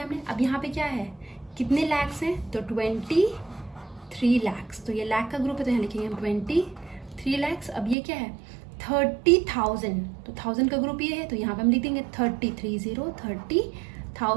हमने। अब यहाँ पे क्या है कितने लैक्स हैं, तो 23 लैक्स। तो ये लाख का ग्रुप है तो यहाँ लिखेंगे हम 23 लैक्स। अब ये क्या है 30,000, तो 1000 का ग्रुप ये है तो यहाँ पे हम लिख देंगे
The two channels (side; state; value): left; drops out; at 8.0 s